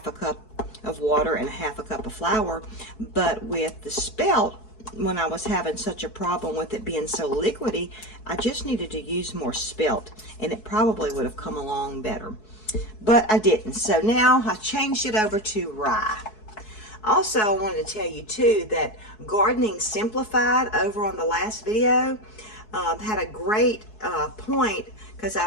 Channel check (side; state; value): right; late; 4.7 ms